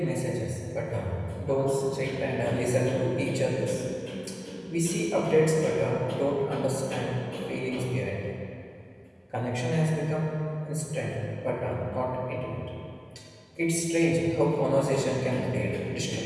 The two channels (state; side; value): identical; both; correlation 1.00